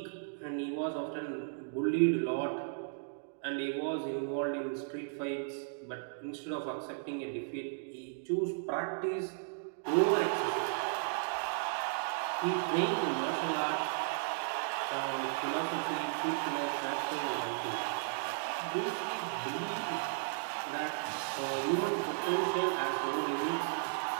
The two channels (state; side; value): silent; left; digital silence